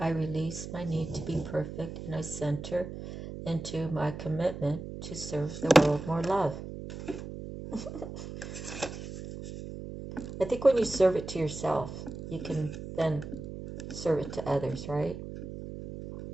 release my need to be perfect and I center into my commitment to serve the world more love. I think when you serve it to yourself, you can then serve it to others, right?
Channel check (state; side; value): noise; right; hum, 9 dB below the sound